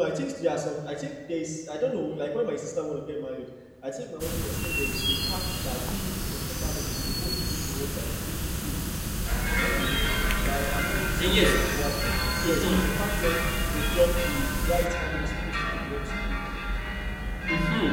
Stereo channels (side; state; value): both; identical; correlation 1.00